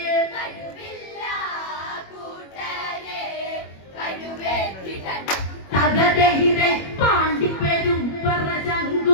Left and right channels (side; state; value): right; late; 21 ms